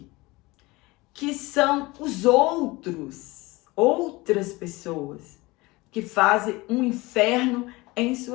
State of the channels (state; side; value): quieter; right; 22.3 dB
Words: Que são os outras pessoas que fazem um inferno em